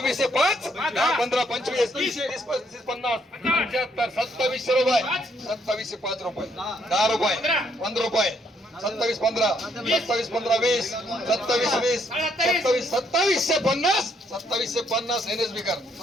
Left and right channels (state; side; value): normal; both; correlation 0.70